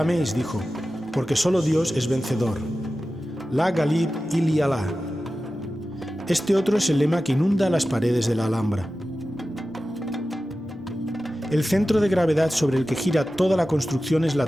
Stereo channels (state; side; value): normal; both; correlation 0.94